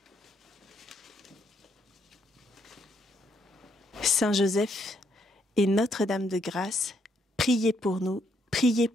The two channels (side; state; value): both; normal; correlation 0.73